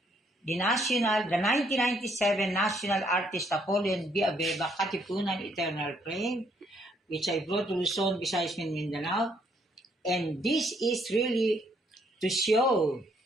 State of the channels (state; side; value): normal; both; correlation 0.69